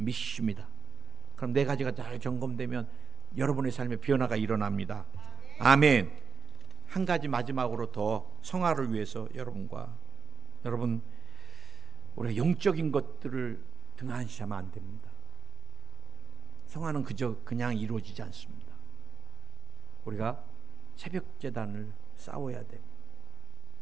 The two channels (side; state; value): left; quieter; 5.3 dB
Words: 그럼 네 가지가 잘 점검되면 여러분의 삶에 변화가 일어납니다. 아멘. 한 가지 마지막으로 더 성화를 위해서 여러분 우리가 영적인 것들을 등한시하면 안 됩니다. 성화는 그냥 이루어지지 않습니다. 우리가 새벽 제단을 싸워야 되고